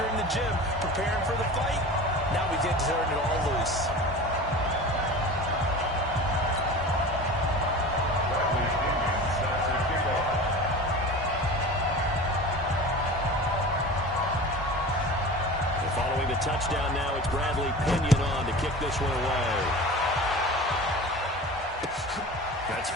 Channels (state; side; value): normal; both; correlation 0.35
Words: in the gym preparing for the fight. Now we get to turn it all loose. Following the touchdown now, it's Bradley Pinion on to kick this one away. That's